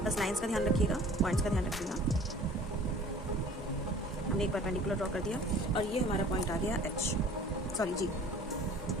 बस लाइंस का ध्यान रखिएगा, पॉइंट्स का ध्यान रखिएगा। हमने एक परपेंडिकुलर ड्रॉ कर दिया और ये हमारा पॉइंट आ गया G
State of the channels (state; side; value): normal; both; correlation 0.47